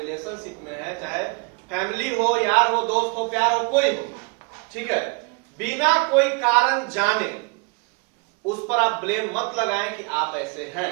में है, चाहे फैमिली हो, यार हो, दोस्त हो, प्यार हो, कोई हो, ठीक है, बिना कोई कारण जाने उस पर आप ब्लेम मत लगाएं कि आप ऐसे हैं,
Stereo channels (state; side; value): quieter; left; 31.0 dB